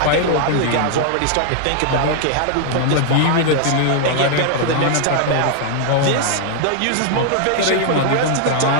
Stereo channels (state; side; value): different; both; correlation 0.00